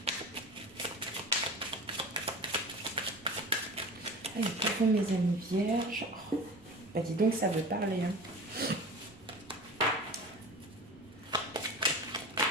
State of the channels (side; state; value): right; noise; rumble, 29 dB below the sound